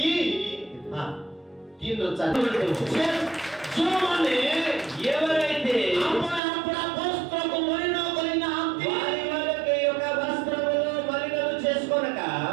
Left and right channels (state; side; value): drops out; left; at 6.4 s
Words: ଯେଉଁମାନେ ఎవరైతే ଆପଣ ଆପଣ ବସ୍ତ୍ରକୁ ମଳିନ କରିନାହାନ୍ତି వారి వాళ్ళకి యొక్క వస్త్రములు మలినము చేసుకొనక.